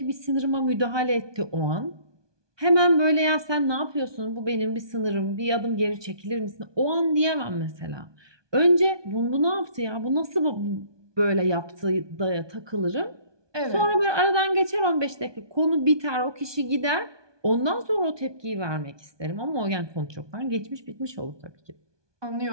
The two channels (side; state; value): left; late; 1.2 ms